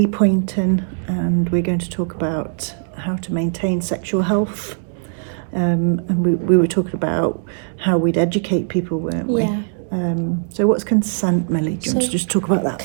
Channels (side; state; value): left; silent; digital silence